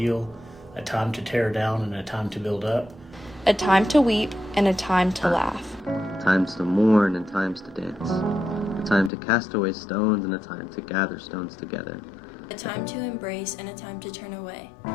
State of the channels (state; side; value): drops out; right; at 9.1 s